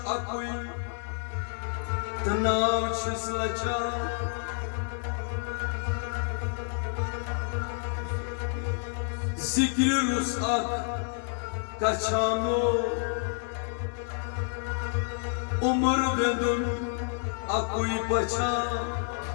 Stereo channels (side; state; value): right; silent; 58 dB below the other